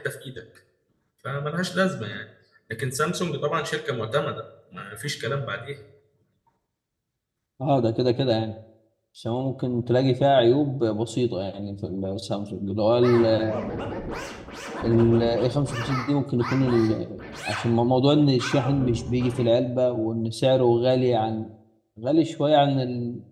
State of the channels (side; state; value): both; identical; correlation 1.00